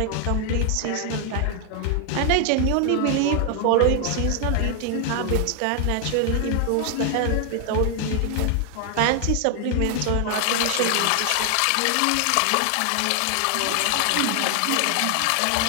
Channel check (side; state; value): both; different; correlation 0.00